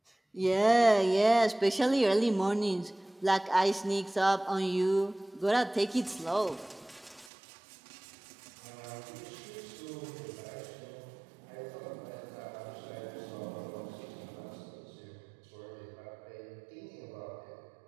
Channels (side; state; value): left; drops out; at 7.3 s